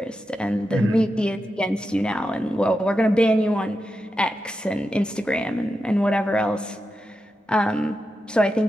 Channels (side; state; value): both; normal; correlation 0.89